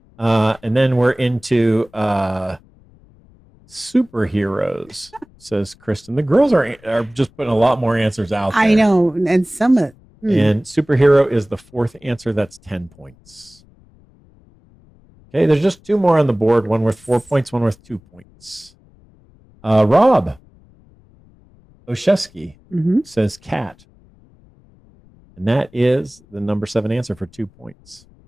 And then we're into superheroes, says Kristen. The girls are just putting a lot more answers out there. I know, and some of And superhero is the 4th answer. That's 10 points. Okay, there's just 2 more on the board. One worth 4 points, one worth 2 points. Rob Oshesky says cat. And that is the number 7 answer for 2 points.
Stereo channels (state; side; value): noise; left; rumble, 29 dB below the sound